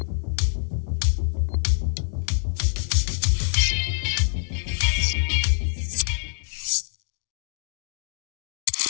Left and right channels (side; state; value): right; silent; 61 dB below the other